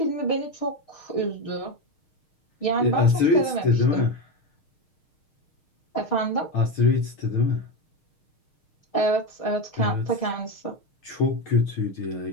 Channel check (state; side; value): late; right; 6.5 ms